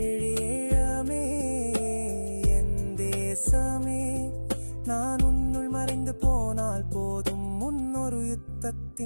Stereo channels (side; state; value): both; inverted; correlation -1.00